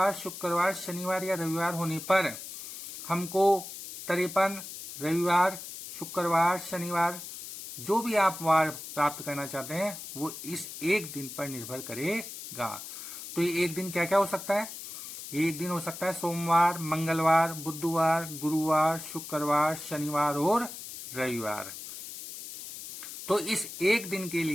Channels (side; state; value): left; noise; hiss, 11 dB below the sound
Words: शुक्रवार, शनिवार या रविवार होने पर हमको 53 रविवार, शुक्रवार, शनिवार जो भी आप वार प्राप्त करना चाहते हैं वो इस एक दिन पर निर्भर करेगा। तो ये एक दिन क्या क्या हो सकता है? ये एक दिन हो सकता है सोमवार, मंगलवार, बुधवार, गुरुवार, शुक्रवार, शनिवार और रविवार। तो इस एक दिन के